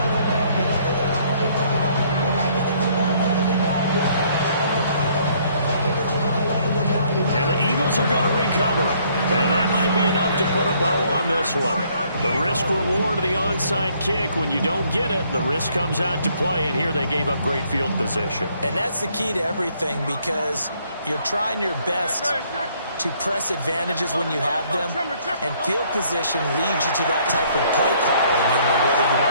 And the Eagles are going to recover. And that might be enough to put a bow on this one. The risk-reward of the onside kick, when you don't get it, the risk comes out to play, and here they gave up great field position. And that's the key to everything, because you're trying your best to press advantages when you have them, and field position leads you to that type of play calling, whether you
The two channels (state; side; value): inverted; both; correlation -0.65